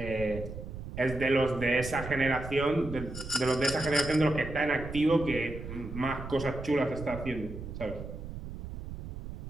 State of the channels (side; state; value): right; noise; rumble, 9 dB below the sound